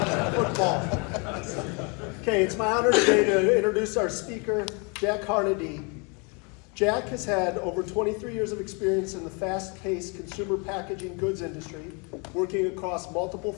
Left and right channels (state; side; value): quieter; right; 33.1 dB